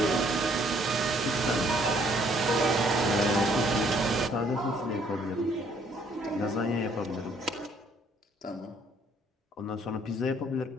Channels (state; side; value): normal; both; correlation 0.64